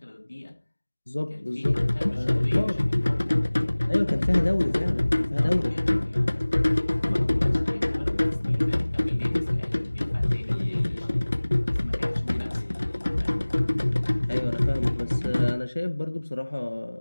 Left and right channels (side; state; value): both; inverted; correlation -1.00